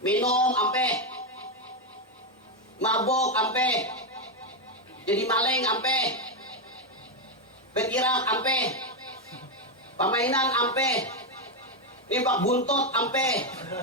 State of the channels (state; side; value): normal; both; correlation 0.06